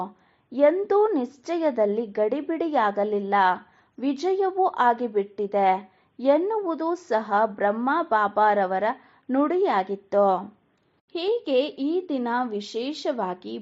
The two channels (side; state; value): both; identical; correlation 1.00